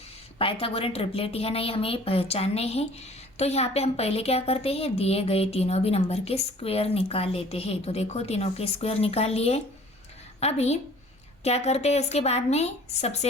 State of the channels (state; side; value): normal; both; correlation 0.51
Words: Pythagorean triplet है ना, ये हमें पहचानने हैं। तो यहाँ पे हम पहले क्या करते हैं, दिए गए तीनों भी नंबर के स्क्वायर निकाल लेते हैं। तो देखो तीनों के स्क्वायर निकाल लिए। अभी क्या करते हैं, इसके बाद में